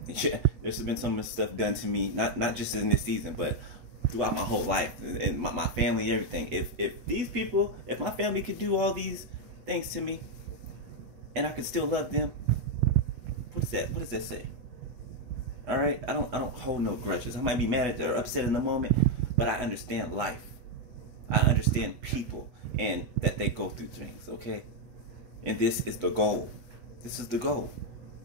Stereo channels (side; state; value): left; late; 8.1 ms